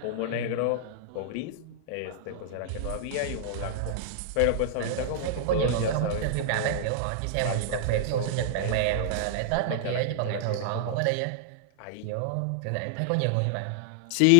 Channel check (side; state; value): both; different; correlation -0.01